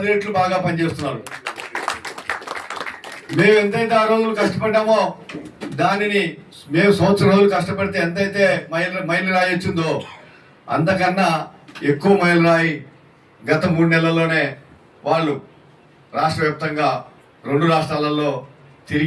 రెట్లు బాగా పనిచేస్తున్నారు. మేము ఎంతైతే ఆ రోజులు కష్టపడ్డామో దానిని మేము సంవత్సరం రోజులు కష్టపడితే ఎంతైతే మైలు రాయి వచ్చిందో అంతకన్నా ఎక్కువ మైలు రాయి గత 3 నెలల్లోనే వాళ్ళు రాష్ట్ర వ్యాప్తంగా 2 రాష్ట్రాలలో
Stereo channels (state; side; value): identical; both; correlation 1.00